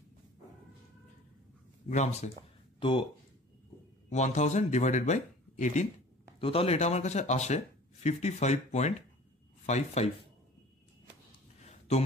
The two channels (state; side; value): normal; both; correlation 0.45